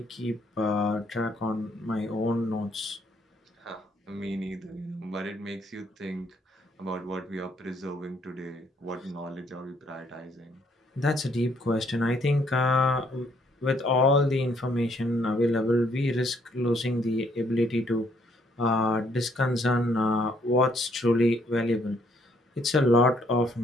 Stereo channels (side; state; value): both; normal; correlation 0.68